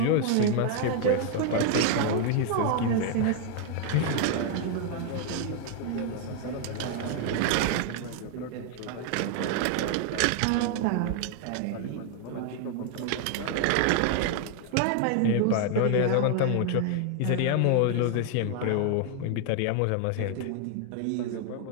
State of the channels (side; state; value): both; different; correlation 0.00